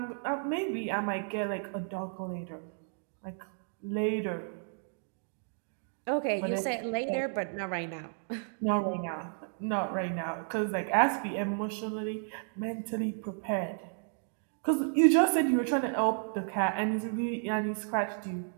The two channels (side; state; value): left; silent; 56 dB below the other